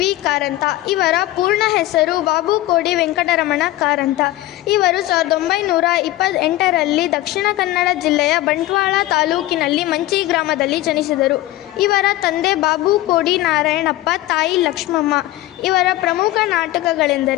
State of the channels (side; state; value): right; quieter; 16.3 dB